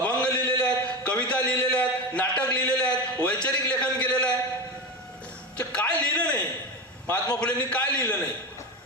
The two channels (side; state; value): both; normal; correlation 0.20